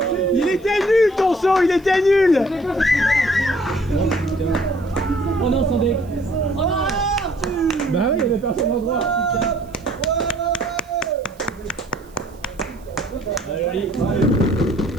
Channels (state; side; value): noise; right; hiss, 29 dB below the sound